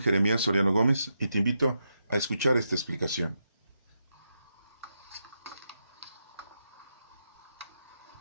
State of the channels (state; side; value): inverted; both; correlation -0.85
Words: Jeremías Soriano Gómez y te invito a escuchar esta explicación.